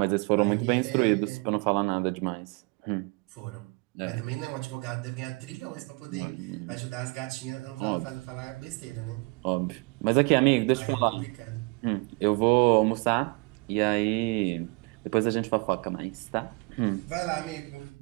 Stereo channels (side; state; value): left; quieter; 30.0 dB